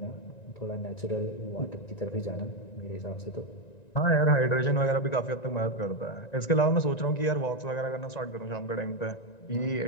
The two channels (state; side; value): late; right; 1.9 ms